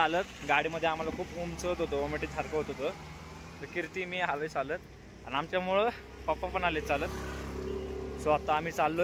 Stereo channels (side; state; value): both; identical; correlation 1.00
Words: गाडीमध्ये आम्हाला खूप उंच होत होतं. वॉमिटिंग सारखं होत होतं. तर कीर्ती मी आलोय चालत. आणि आमच्यामुळं पप्पा पण आले चालत. सो आता आम्ही